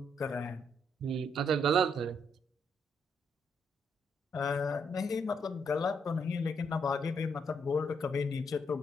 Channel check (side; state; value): both; normal; correlation 0.74